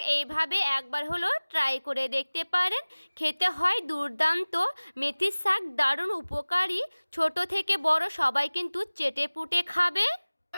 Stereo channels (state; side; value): inverted; both; correlation -1.00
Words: এইভাবে একবার হলো ট্রাই করে দেখতে পারেন। খেতে হয় দুর্দান্ত। মেথি শাক দারুণ উপকারী, ছোট থেকে বড় সবাই কিন্তু চেটে পুটে খাবে।